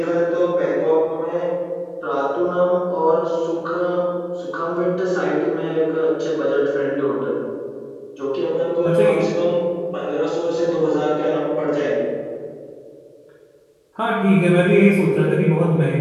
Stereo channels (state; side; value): identical; both; correlation 1.00